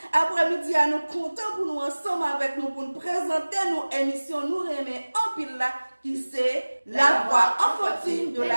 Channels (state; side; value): inverted; both; correlation -1.00